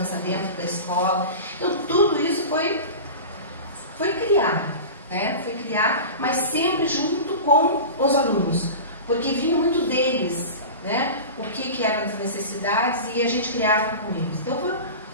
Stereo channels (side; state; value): both; inverted; correlation -0.31